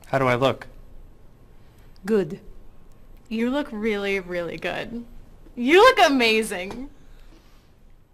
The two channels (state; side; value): identical; both; correlation 1.00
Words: How do I look? Good. You look really, really good. You look amazing.